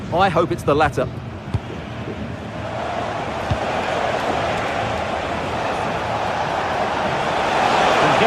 I hope it's the latter. And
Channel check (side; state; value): both; identical; correlation 1.00